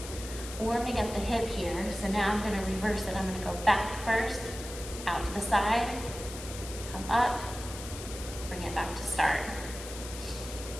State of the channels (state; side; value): noise; left; hiss, 11 dB below the sound